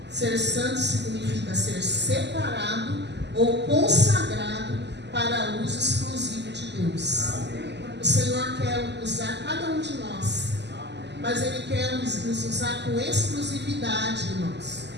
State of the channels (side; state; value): left; late; 0.50 ms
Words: Ser santo significa ser separado ou consagrado para uso exclusivo de Deus. O Senhor quer usar cada um de nós, mas Ele quer nos usar com exclusividade, irmãos.